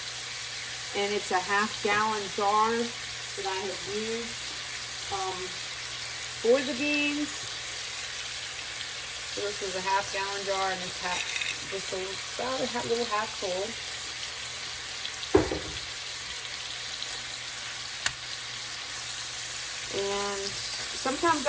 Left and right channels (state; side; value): identical; both; correlation 1.00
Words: and it's a 1/2 gallon jar that I have used for the beans. So this was a 1/2 gallon jar, and it's just about a little half full. And sometimes